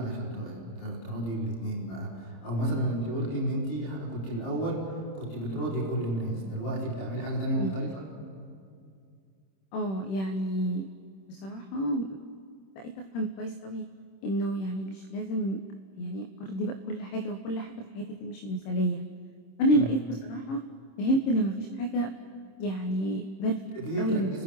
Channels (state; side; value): late; right; 26 ms